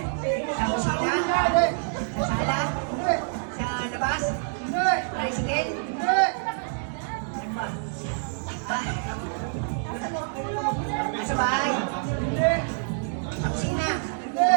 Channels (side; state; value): left; silent; digital silence